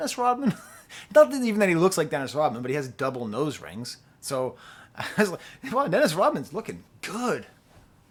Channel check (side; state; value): both; identical; correlation 1.00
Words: Rodman? Not even that he looks like Dennis Rodman, but he has double nose rings. So I was like, wow, Dennis Rodman's looking good.